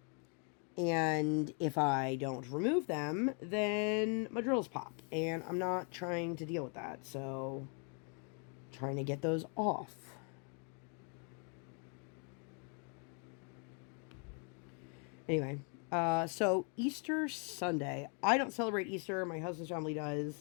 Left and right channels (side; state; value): right; quieter; 39.4 dB